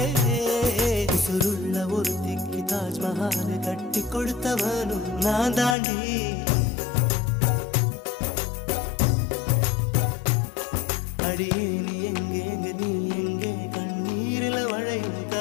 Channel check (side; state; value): right; drops out; at 5.8 s